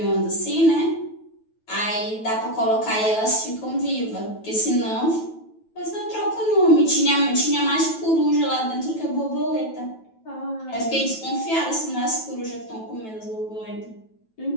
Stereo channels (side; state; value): right; late; 9.2 ms